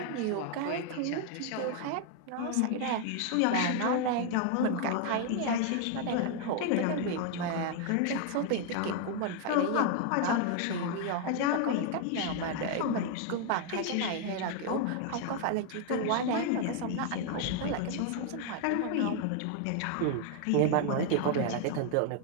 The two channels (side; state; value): both; different; correlation 0.00